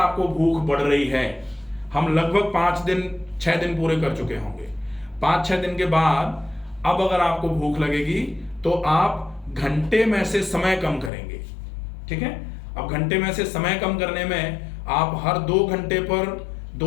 भूख बढ़ रही है, हम लगभग 5-6 दिन पूरे कर चुके होंगे, 5-6 दिन के बाद अब अगर आपको भूख लगेगी तो आप घंटे में से समय कम करेंगे। ठीक है, अब घंटे में से समय कम करने में आप हर 2 घंटे पर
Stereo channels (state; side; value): drops out; right; at 11.1 s